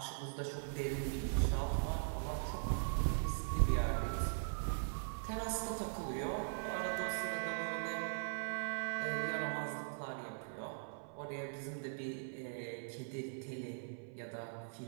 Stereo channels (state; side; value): silent; left; 51 dB below the other